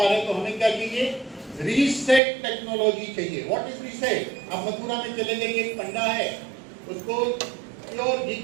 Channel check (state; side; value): drops out; left; at 2.2 s